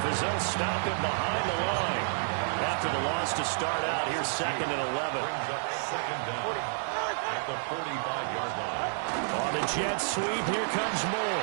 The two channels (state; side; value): silent; left; 58 dB below the other